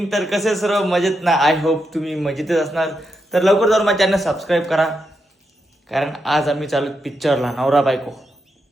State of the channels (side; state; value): both; normal; correlation 0.84